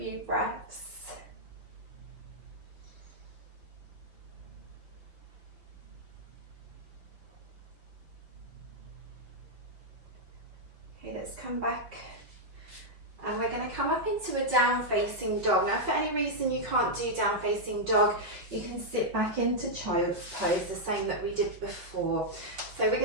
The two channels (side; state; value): left; late; 5.7 ms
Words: breaths. Okay, let's come back. And we're going to come up into a down facing dog. Now if for any reason you can't do down facing dog, you can sit back into child's pose, the same that we did before. So we're